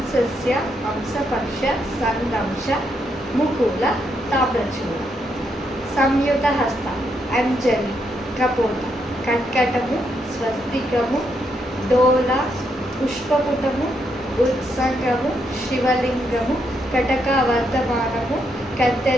హంసపక్ష, సందంశ, ముకుల, తామ్రచూడ. సంయుత హస్త, అంజలి, కపోత, కర్కటము, స్వస్తికము, డోల, పుష్పపుటము, ఉత్సంగము, శివలింగము, కటకవర్ధమానము,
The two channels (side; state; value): both; normal; correlation 0.78